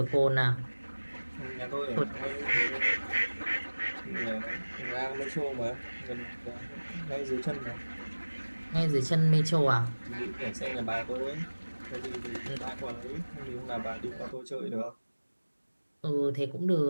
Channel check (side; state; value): both; inverted; correlation -1.00